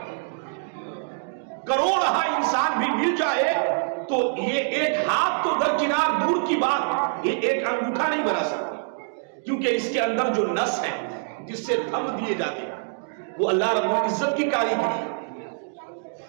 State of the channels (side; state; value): left; silent; digital silence